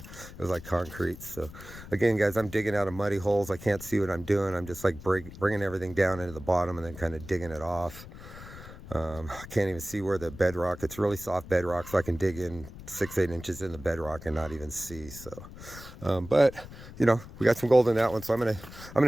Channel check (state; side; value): noise; left; rumble, 15 dB below the sound